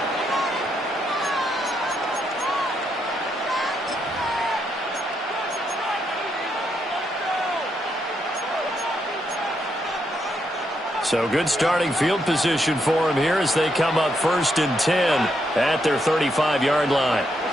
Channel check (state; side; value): normal; both; correlation 0.79